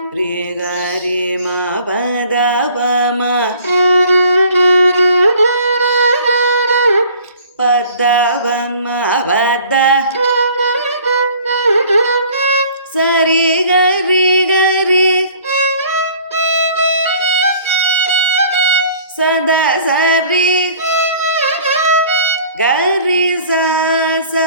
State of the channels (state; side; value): inverted; both; correlation -0.51